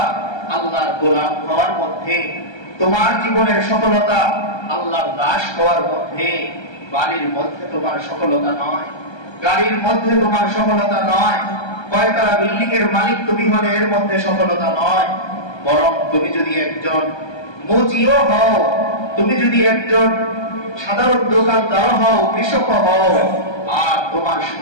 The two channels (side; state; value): right; late; 1.3 ms